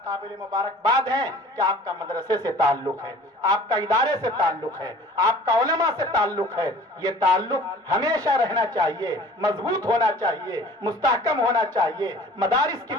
قابل مبارکباد ہیں کہ آپ کا مدرسے سے تعلق ہے، آپ کا ادارے سے تعلق ہے، آپ کا علماء سے تعلق ہے۔ یہ تعلق ہمیشہ رہنا چاہیے، مضبوط ہونا چاہیے، مستحکم ہونا چاہیے۔ مدارس کی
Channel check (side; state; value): both; normal; correlation 0.47